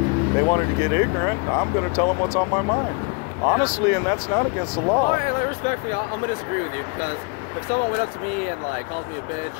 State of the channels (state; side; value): quieter; right; 32.6 dB